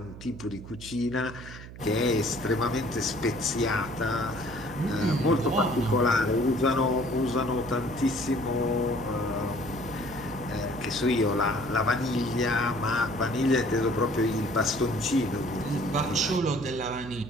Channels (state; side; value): noise; right; hum, 14 dB below the sound